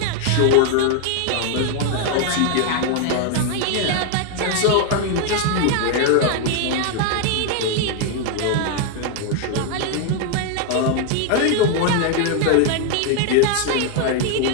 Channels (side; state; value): both; different; correlation 0.00